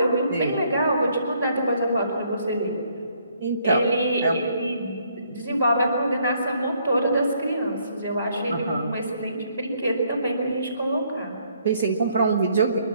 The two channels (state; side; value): inverted; both; correlation -0.68